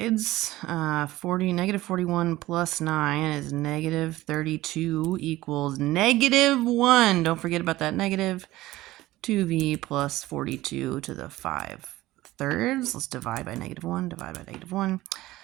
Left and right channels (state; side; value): quieter; left; 17.1 dB